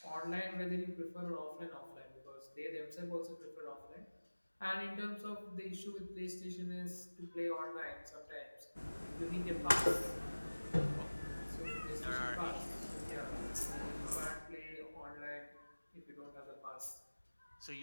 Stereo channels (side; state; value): both; inverted; correlation -1.00